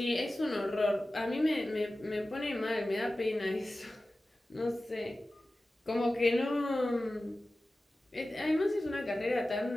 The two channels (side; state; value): both; normal; correlation 0.96